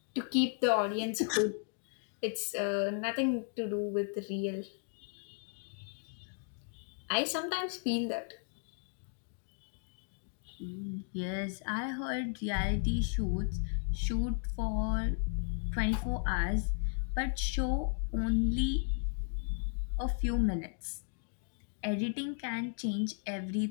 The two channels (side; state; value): right; silent; 54 dB below the other